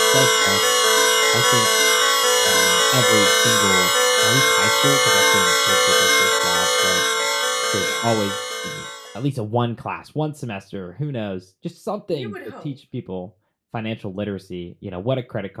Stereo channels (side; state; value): both; identical; correlation 1.00